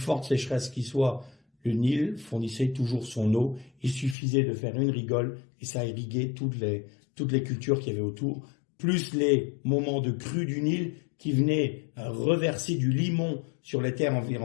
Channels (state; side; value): drops out; right; at 4.2 s